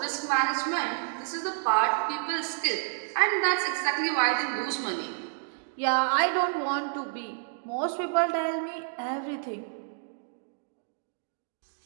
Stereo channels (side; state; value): left; silent; digital silence